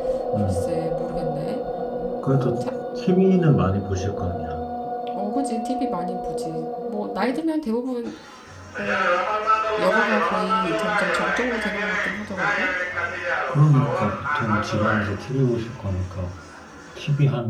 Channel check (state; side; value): identical; both; correlation 1.00